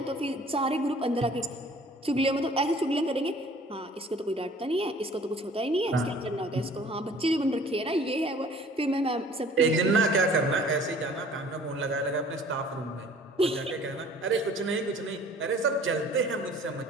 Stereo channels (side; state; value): both; normal; correlation 0.51